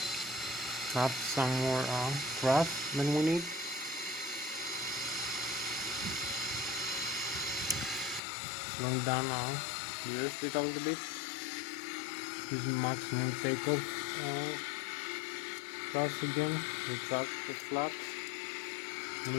Have some more thrust than we need. Slowing down the airspeed a little bit. Using maximum takeoff thrust again. Retract the flaps. We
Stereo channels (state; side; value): drops out; right; at 8.2 s